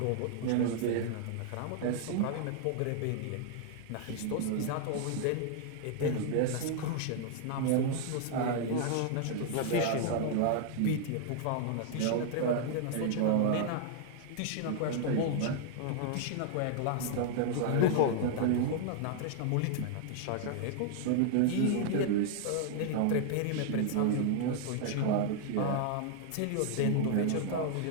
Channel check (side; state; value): both; different; correlation 0.00